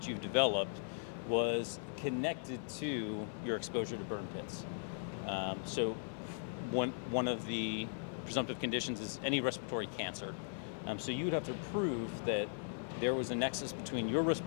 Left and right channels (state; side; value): silent; right; 52 dB below the other